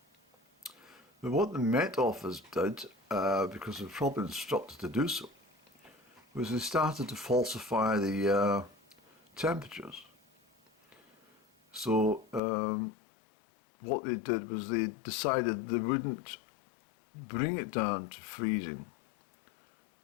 But what the Met Office did, because they were probably instructed to do so, was they started to falsify the temperatures. So what they did was they decided they wouldn't bring it down to freezing.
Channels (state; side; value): drops out; right; at 12.4 s